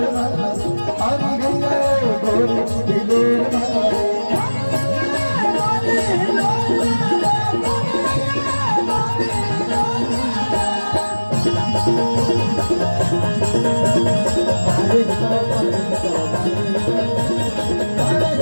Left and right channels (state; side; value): inverted; both; correlation -1.00